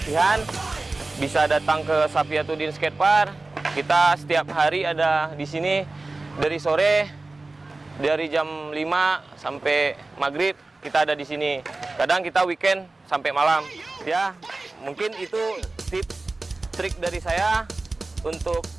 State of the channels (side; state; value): left; quieter; 3.3 dB